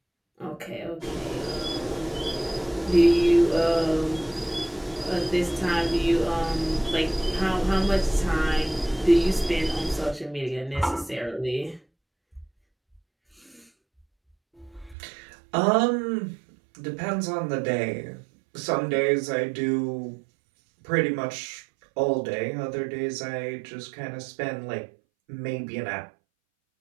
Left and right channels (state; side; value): drops out; left; at 15.0 s